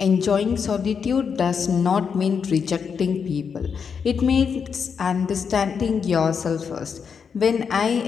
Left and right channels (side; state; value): right; quieter; 6.4 dB